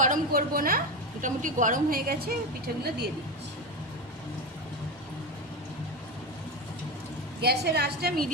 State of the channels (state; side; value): normal; both; correlation 0.18